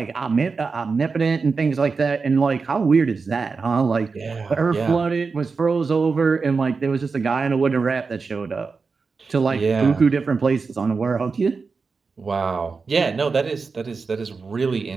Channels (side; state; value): left; quieter; 4.7 dB